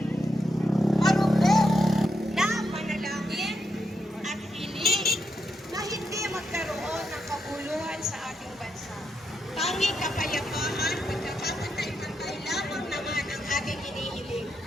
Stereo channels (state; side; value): normal; both; correlation 0.82